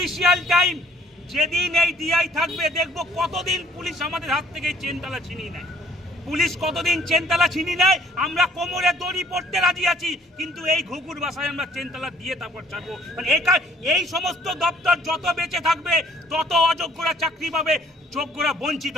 টাইম যেদিন এই ডিআই থাকবে, দেখবো কতদিন পুলিশ আমাদের হাত থেকে চেনতালা ছিনিয়ে নেয়। পুলিশ কতদিন চেনতালা ছিনিয়ে নেয়, আমরা কোমরে দড়ি পড়তে রাজি আছি, কিন্তু এই ঘুঘুর বাসায় আমরা চেনতালা দিয়ে তারপর ছাড়বো। মানে এই সমস্ত দপ্তর যত বেঁচে থাকবে তত অযোগ্যরা চাকরি পাবে, যোগ্যরা বঞ্চিত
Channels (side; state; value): both; normal; correlation 0.60